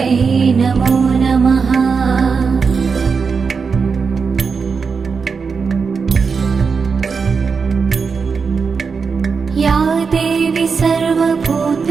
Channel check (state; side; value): quieter; left; 5.3 dB